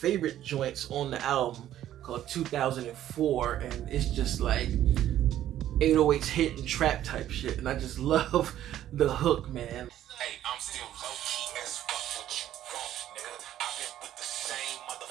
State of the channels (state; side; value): quieter; left; 12.2 dB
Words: joints on the album called 2004, and it's just like 808s hit and trap type shit, and I just love the hook, man. Hey, I'm still low-key as fuck what you want, nigga. I've been with the same